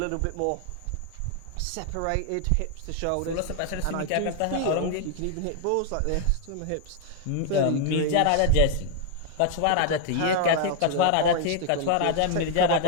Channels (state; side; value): different; both; correlation 0.00